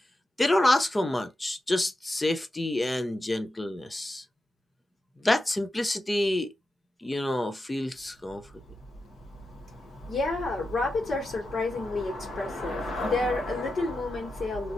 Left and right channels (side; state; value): both; normal; correlation 0.90